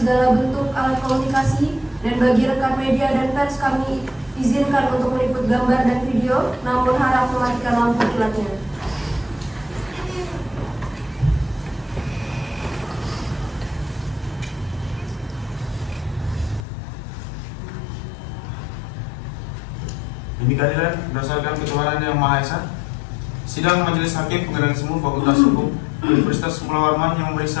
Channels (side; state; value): right; drops out; at 16.7 s